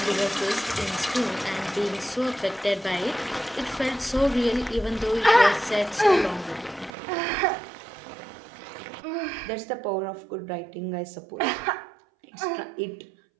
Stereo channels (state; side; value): drops out; left; at 6.9 s